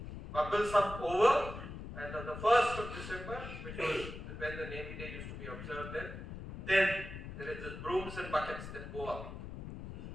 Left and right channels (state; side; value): noise; left; rumble, 9 dB below the sound